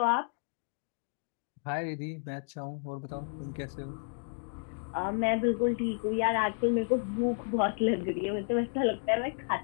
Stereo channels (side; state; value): right; silent; digital silence